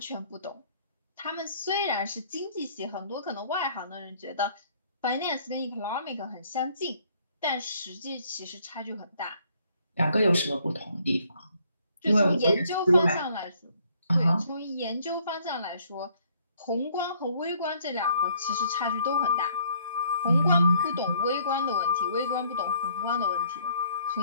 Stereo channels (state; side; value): inverted; both; correlation -0.64